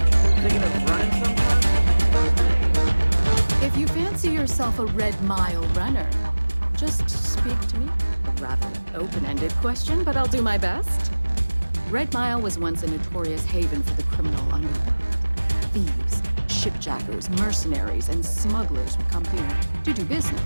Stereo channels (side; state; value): both; inverted; correlation -1.00